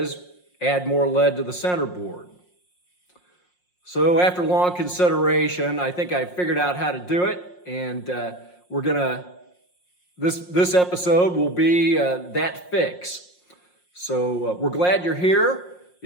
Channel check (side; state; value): right; late; 5.6 ms